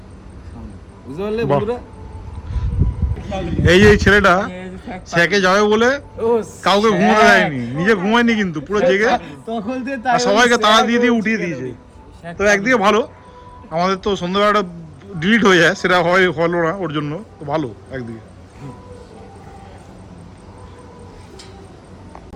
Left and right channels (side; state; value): both; identical; correlation 1.00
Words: এই যে ছেলেটা স্যাকে যাবে বলে কাউকে ঘুমোতে দেয়নি, নিজে ঘুমায়নি কিন্তু পুরো জেগে আর সবাইকে তাড়া দিয়ে দিয়ে উঠিয়ে দিয়েছে। তো একদিকে ভালো, আমাদের তো সন্ধ্যাবেলাটা ডিলিট হয়ে যায়, সেটা হলো না ওর জন্য, তো ভালো একদিকে।